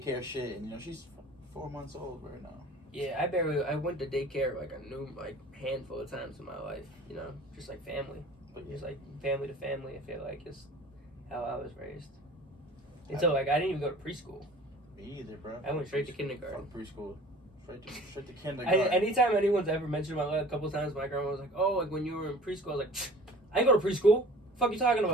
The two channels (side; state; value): both; normal; correlation 0.45